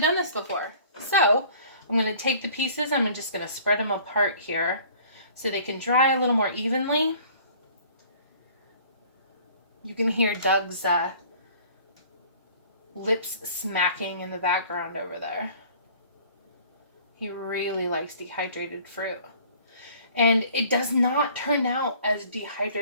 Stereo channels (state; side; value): inverted; both; correlation -0.51